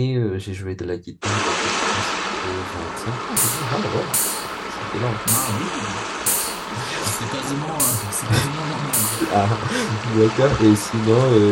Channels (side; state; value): both; identical; correlation 1.00